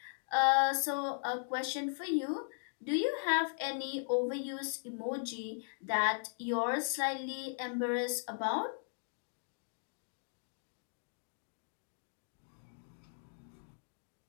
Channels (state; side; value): silent; right; digital silence